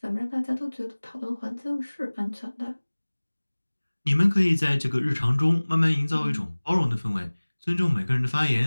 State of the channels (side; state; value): both; inverted; correlation -1.00